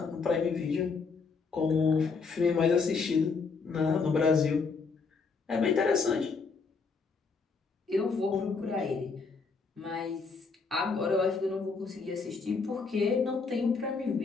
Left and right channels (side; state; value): right; quieter; 4.8 dB